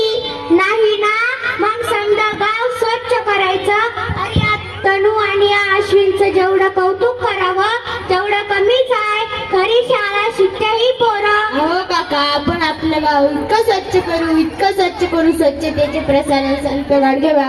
नाही ना, मग समजा गाव स्वच्छ करायचं. अरे या तनू आणि या अश्विनचं जेवढं कौतुक करावं तेवढं कमीच आहे. खरी शाळा शिकते ही पोरं. हो काका, आपण आपलं गाव इतकं स्वच्छ करू, स्वच्छतेचे प्रसारण संत गाडगे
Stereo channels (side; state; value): both; identical; correlation 1.00